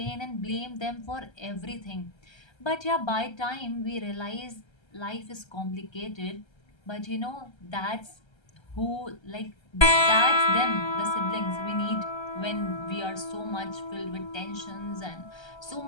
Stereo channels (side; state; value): right; late; 1.3 ms